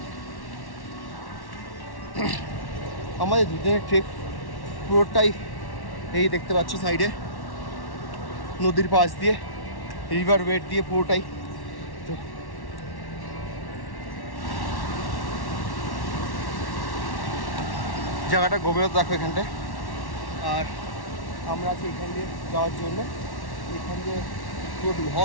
আমাদের দুদিনের ট্রেক পুরোটাই এই দেখতে পাচ্ছ সাইডে নদীর পাশ দিয়ে, রিভার ওয়েট দিয়ে পুরোটাই। তো জায়গাটা গভীরতা দেখো এখানটায়। আর আমরা আছি এখান দিয়ে যাওয়ার জন্য। এখান দিয়ে পুরো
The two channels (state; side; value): late; right; 1.1 ms